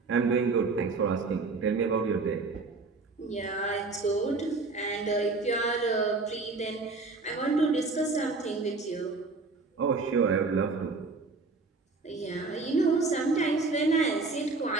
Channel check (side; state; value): left; quieter; 3.9 dB